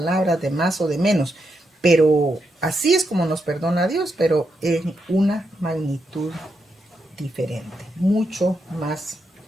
de más o de menos. Pero así es como nos perdona Dios, pero en una magnitud diferente, mucho más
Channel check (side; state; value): both; normal; correlation 0.83